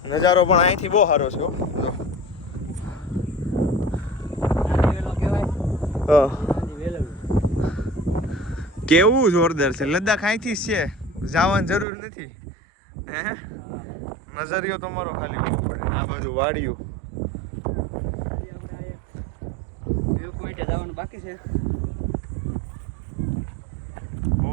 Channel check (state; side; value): drops out; left; at 11.9 s